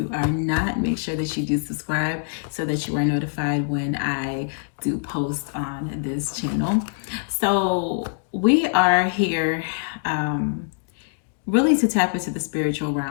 are not, make sure that you do subscribe so that you are notified when I do post on this channel. So we are here really to tap into the spiritual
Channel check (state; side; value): silent; right; digital silence